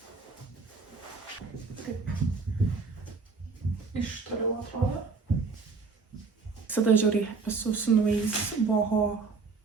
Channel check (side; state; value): left; quieter; 4.6 dB